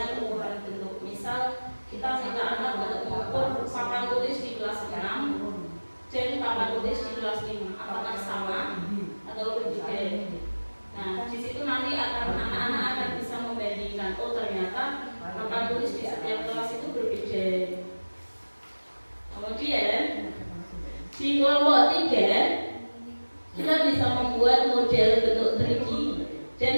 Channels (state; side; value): inverted; both; correlation -1.00